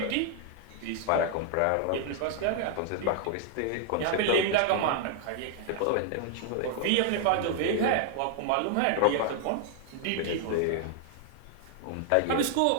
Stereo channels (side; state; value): both; different; correlation 0.00